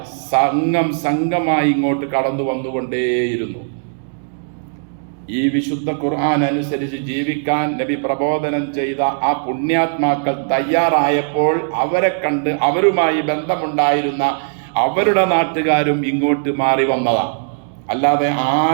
സംഘമായി ഇങ്ങോട്ട് കടന്നു വന്നുകൊണ്ടേയിരുന്നു. ഈ വിശുദ്ധ ഖുർആൻ അനുസരിച്ച് ജീവിക്കാൻ നബി പ്രബോധനം ചെയ്ത ആ പുണ്യാത്മാക്കൾ തയ്യാറായപ്പോൾ അവരെ കണ്ട് അവരുമായി ബന്ധമുണ്ടായിരുന്ന അവരുടെ നാട്ടുകാരും ഇങ്ങോട്ട് മാറി വന്നതാണ്. അല്ലാതെ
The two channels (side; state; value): left; silent; digital silence